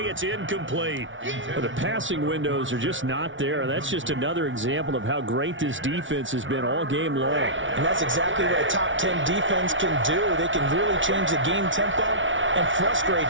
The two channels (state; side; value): late; left; 0.56 ms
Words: it's incomplete. Well, the passing windows are just not there. That's just another example of how great this defense has been all game long. And that's exactly what a top 10 defense can do. They can really change the game tempo and